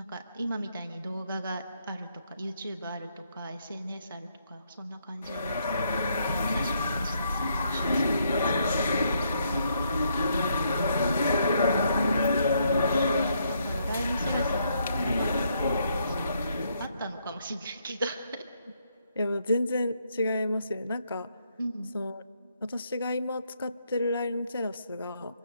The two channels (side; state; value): both; inverted; correlation -0.74